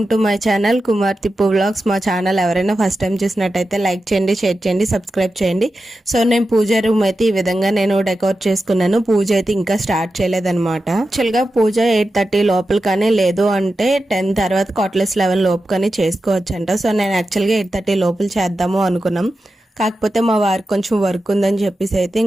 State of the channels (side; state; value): both; normal; correlation 0.91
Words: to my channel Kumar Tippu vlogs. మా ఛానల్ ఎవరైనా ఫస్ట్ టైం చూసినట్టయితే లైక్ చేయండి, షేర్ చేయండి, సబ్స్క్రైబ్ చేయండి. సో నేను పూజ రూమ్ అయితే ఈ విధంగా నేను డెకోర్ చేసుకున్నాను. పూజ అయితే ఇంకా స్టార్ట్ చేయలేదన్నమాట. యాక్చువల్గా పూజ 8:30 లోపల కానీ లేదు అంటే 10 తర్వాత 11 లోపు కానీ చేసుకోవచ్చు అంట. సో నేను యాక్చువల్గా 8:30 లోపల చేద్దాము అనుకున్నాం. కాకపోతే మా వారికి కొంచెం వర్క్ ఉందని చెప్పేసి అయితే